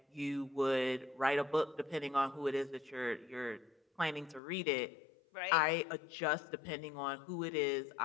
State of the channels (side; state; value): right; drops out; at 4.4 s